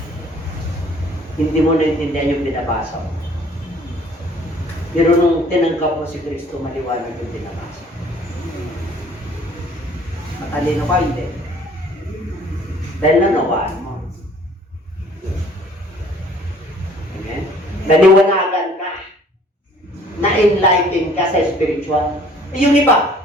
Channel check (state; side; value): normal; both; correlation 0.55